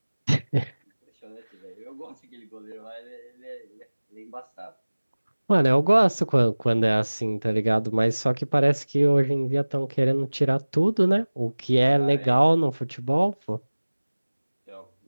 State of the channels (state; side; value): inverted; both; correlation -1.00